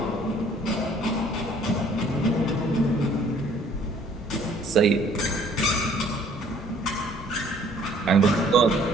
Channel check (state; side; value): normal; both; correlation 0.58